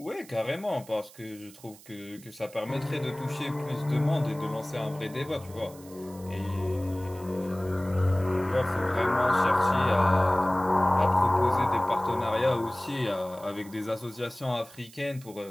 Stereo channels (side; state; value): right; noise; hiss, 22 dB below the sound